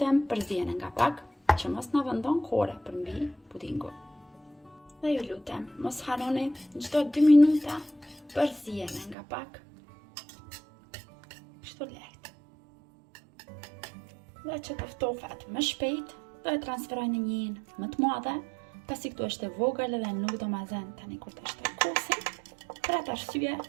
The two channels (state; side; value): drops out; left; at 9.2 s